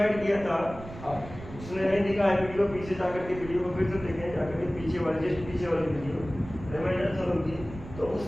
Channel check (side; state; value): right; noise; rumble, 14 dB below the sound